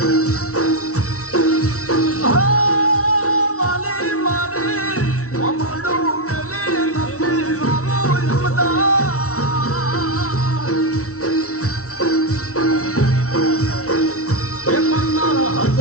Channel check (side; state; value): right; late; 0.64 ms